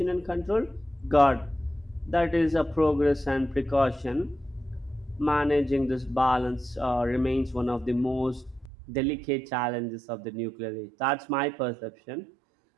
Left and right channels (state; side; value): drops out; left; at 8.7 s